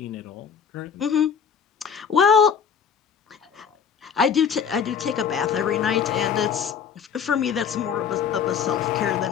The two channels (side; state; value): right; quieter; 7.3 dB